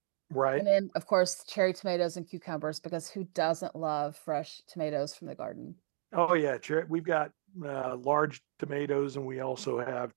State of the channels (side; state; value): left; silent; digital silence